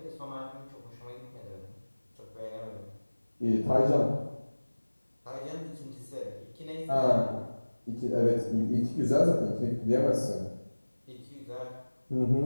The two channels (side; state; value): both; inverted; correlation -1.00